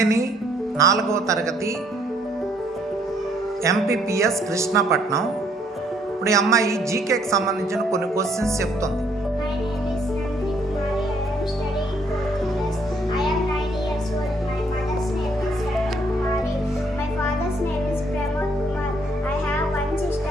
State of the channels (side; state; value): both; normal; correlation 0.66